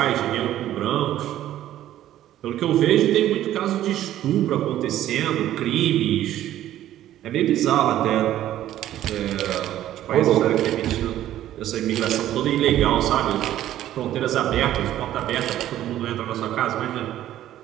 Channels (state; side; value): quieter; left; 12.8 dB